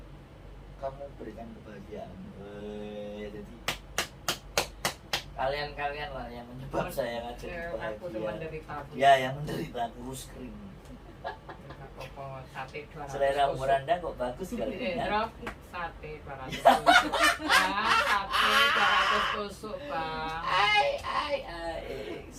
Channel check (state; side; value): identical; both; correlation 1.00